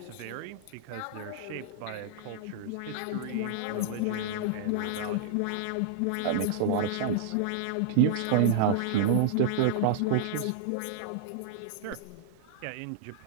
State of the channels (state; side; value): different; both; correlation -0.01